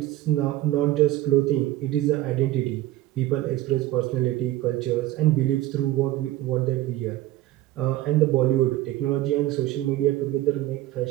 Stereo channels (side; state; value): left; quieter; 15.2 dB